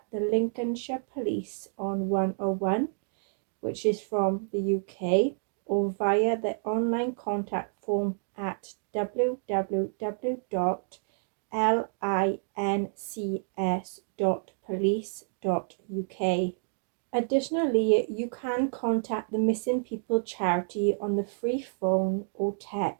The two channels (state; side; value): silent; left; digital silence